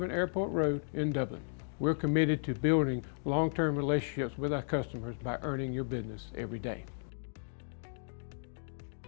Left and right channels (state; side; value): silent; right; digital silence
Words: Airport Road in Dublin. We're committed to building long-term relationships with our customers by earning your business every day.